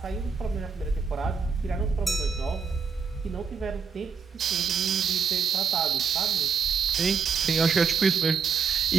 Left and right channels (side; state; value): left; quieter; 5.8 dB